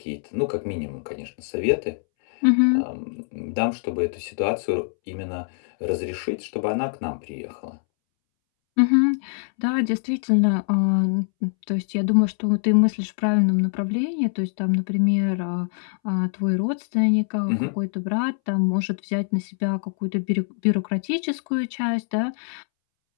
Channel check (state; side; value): silent; right; 63 dB below the other